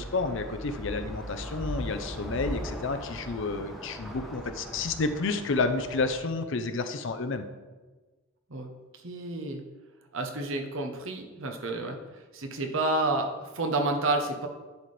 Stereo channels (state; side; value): normal; both; correlation 0.11